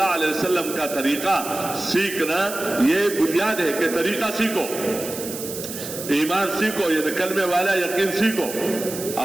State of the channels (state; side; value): noise; right; hiss, 9 dB below the sound